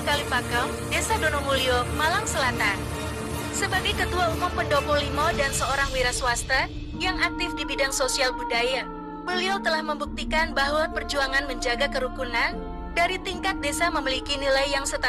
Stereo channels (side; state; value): both; identical; correlation 1.00